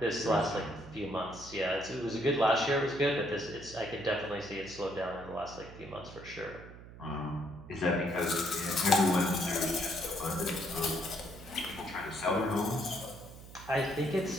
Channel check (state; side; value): noise; right; hum, 16 dB below the sound